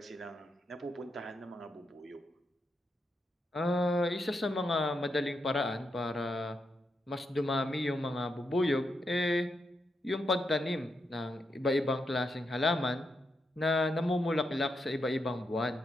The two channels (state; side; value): normal; both; correlation 0.83